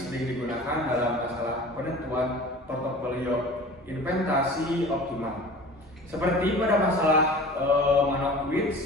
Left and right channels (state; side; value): normal; both; correlation 0.41